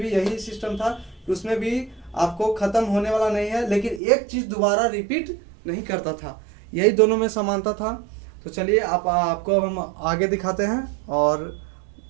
भी यही सिस्टम था, उसमें भी आपको खत्म होने वाला नहीं है, लेकिन एक चीज दोबारा रिपीट नहीं करता था, यही दोनों में समानता था। तो चलिए आपको हम आगे दिखाते हैं और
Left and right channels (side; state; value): left; drops out; at 4.0 s